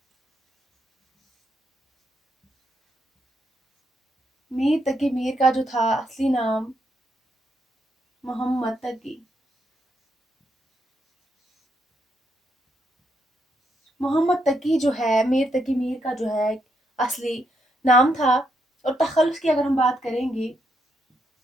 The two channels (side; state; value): both; normal; correlation 0.78